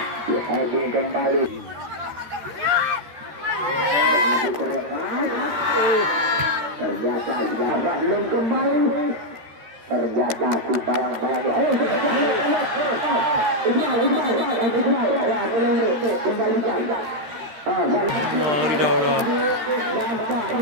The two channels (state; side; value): late; left; 13 ms